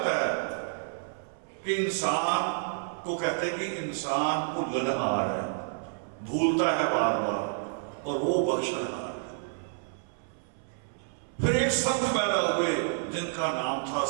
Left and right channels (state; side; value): silent; left; 58 dB below the other